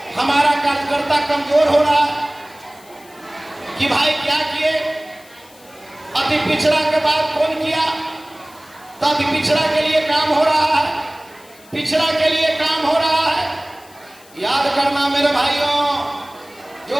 हमारा कार्यकर्ता कमजोर हो रहा है कि भाई क्या किए, अति पिछड़ा के बाद कौन किया, तो अति पिछड़ा के लिए काम हो रहा है, पिछड़ा के लिए काम हो रहा है। याद करना मेरे भाइयों,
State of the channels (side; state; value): left; noise; hiss, 25 dB below the sound